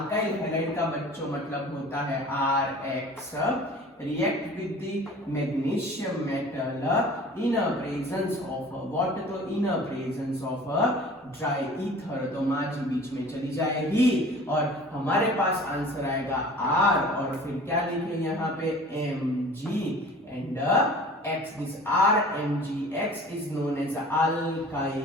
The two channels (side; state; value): both; normal; correlation 0.44